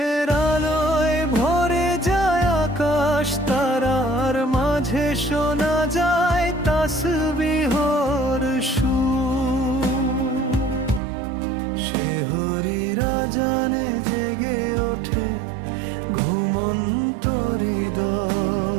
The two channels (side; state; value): left; drops out; at 11.0 s